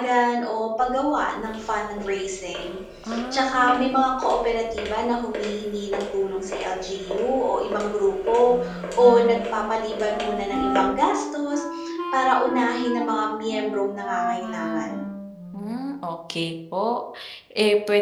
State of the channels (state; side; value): identical; both; correlation 1.00